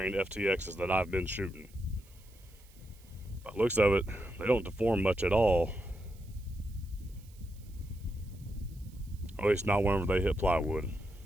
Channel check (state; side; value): noise; right; hiss, 27 dB below the sound